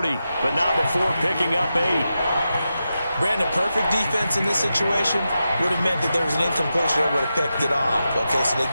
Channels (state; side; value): inverted; both; correlation -0.90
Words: but not before picking up 8. Brandon, perfect defense in this situation would have meant that there was an incompletion that would have picked it off. Okay, so they